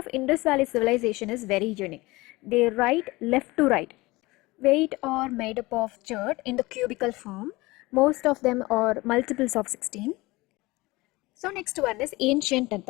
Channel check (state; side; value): quieter; right; 21.6 dB